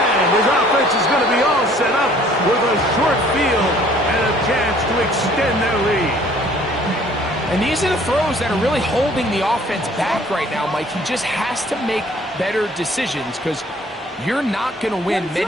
his offense is going to be all set up with a short field and a chance to extend their lead. And these are the throws that are really holding the offense back right now, Mike. He just has to make better decisions because you're not going to win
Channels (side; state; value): both; normal; correlation 0.56